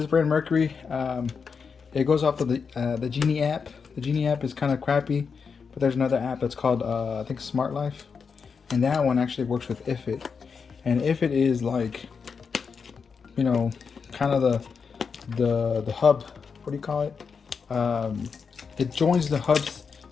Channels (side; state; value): right; quieter; 5.7 dB